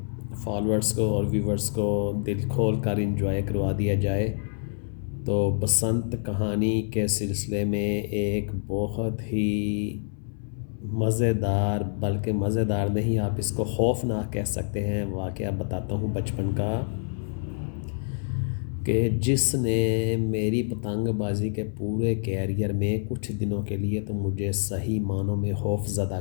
फॉलोअर्स को और व्यूवर्स को दिल खोल कर इंजॉय करवा दिया जाए। तो बसंत कहानी के सिलसिले में एक बहुत ही मज़ेदार, बल्कि मज़ेदार नहीं, आप इसको खौफनाक कह सकते हैं, वाक़या बताता हूँ बचपन का, कि जिसने मेरी पतंगबाज़ी के पूरे कैरियर में कुछ दिनों के लिए तो मुझे सही मानों में खौफज़दा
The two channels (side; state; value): right; silent; 60 dB below the other